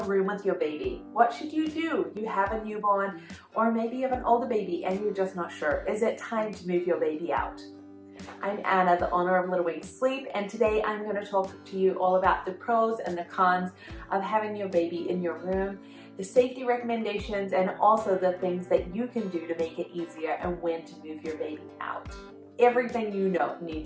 room with your baby? What should you do? You have a newborn, or maybe you have an older baby and you're just not sure. Is it time to move your baby out? I'm Anna, the owner of Little Wings Sleep, and today I'm going to talk to you all about the pros and the cons of having your baby in your room, the safety recommendations, and also the things that you can do to make it easier and when to move your baby out. Everything you need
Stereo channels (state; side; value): identical; both; correlation 1.00